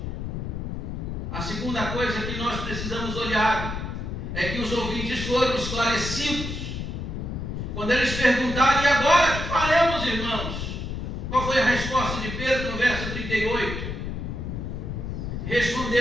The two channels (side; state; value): left; noise; rumble, 5 dB below the sound